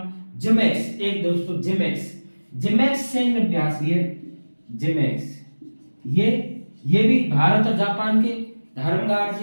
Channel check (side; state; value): both; inverted; correlation -1.00